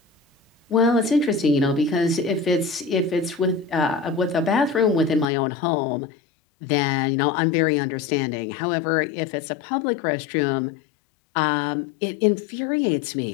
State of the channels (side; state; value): right; drops out; at 5.2 s